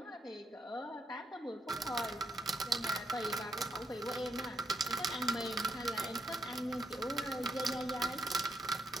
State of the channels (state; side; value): normal; both; correlation 0.76